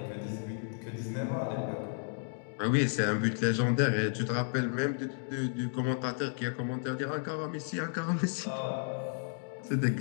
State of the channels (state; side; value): silent; right; digital silence